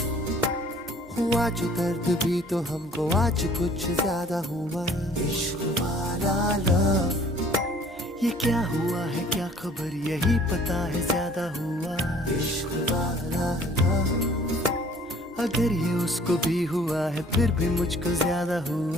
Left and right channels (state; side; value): normal; both; correlation 0.54